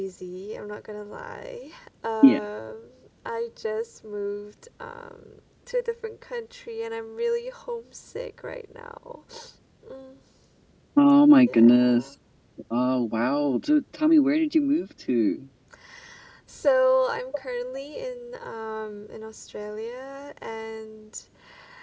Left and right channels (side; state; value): both; identical; correlation 1.00